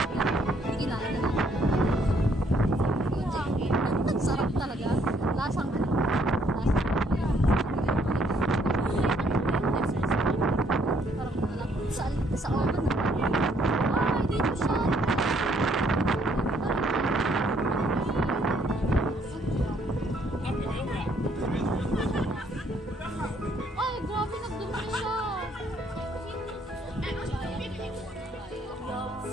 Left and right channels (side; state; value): both; normal; correlation 0.68